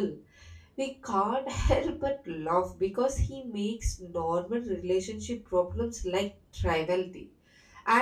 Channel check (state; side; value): identical; both; correlation 1.00